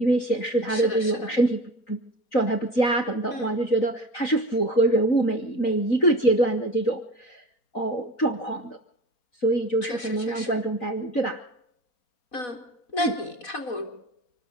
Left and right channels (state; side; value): late; right; 4.1 ms